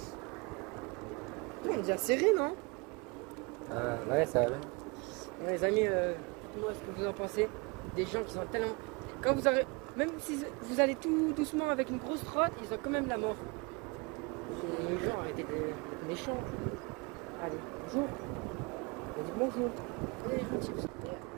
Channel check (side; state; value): left; quieter; 27.9 dB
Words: On est déjà serré, non? Ouais, ça va bien. Les amis, dites-moi ce que vous en pensez. Des gens qui sont tellement. Quand vous aurez. Même si vous allez tout doucement avec une grosse trotte, ils ont quand même la mort. Les gens arrêtez d'être méchants. Allez, bonjour. On dit bonjour. Allez, gentil.